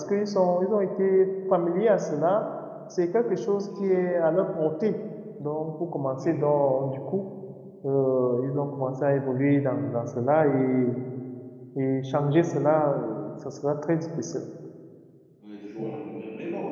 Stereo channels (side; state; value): both; identical; correlation 1.00